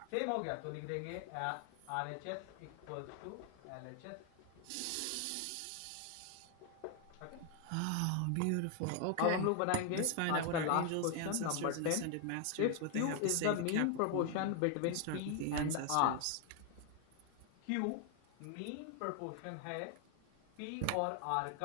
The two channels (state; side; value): different; both; correlation 0.00